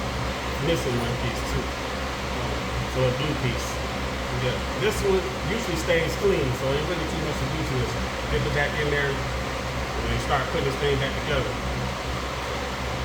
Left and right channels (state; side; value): identical; both; correlation 1.00